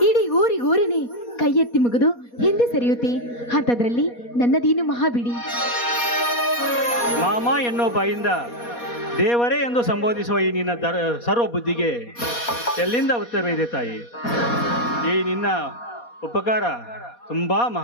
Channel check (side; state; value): right; late; 4.2 ms